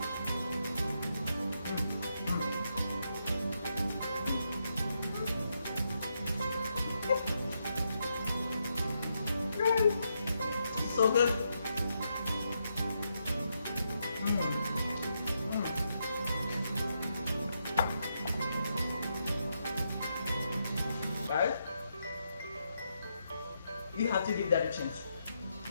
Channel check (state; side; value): inverted; both; correlation -0.81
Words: So good. Guys, you have to give that a chance.